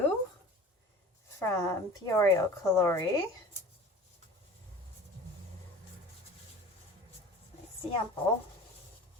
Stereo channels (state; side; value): normal; both; correlation 0.41